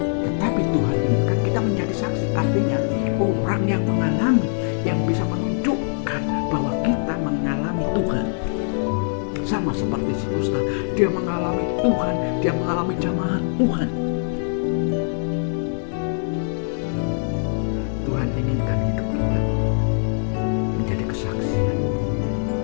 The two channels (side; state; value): right; silent; 64 dB below the other